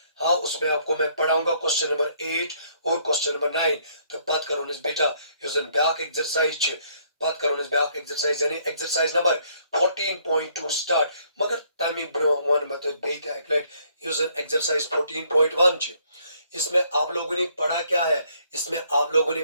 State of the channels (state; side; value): inverted; both; correlation -0.66